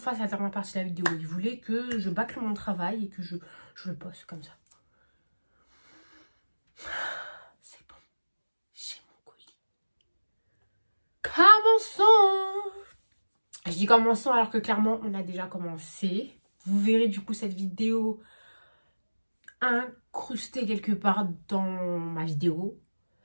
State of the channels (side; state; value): both; inverted; correlation -1.00